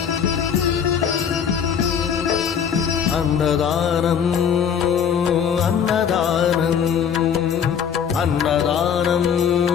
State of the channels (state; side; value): quieter; right; 7.7 dB